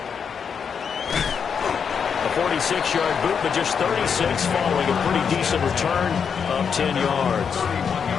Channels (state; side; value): quieter; right; 6.7 dB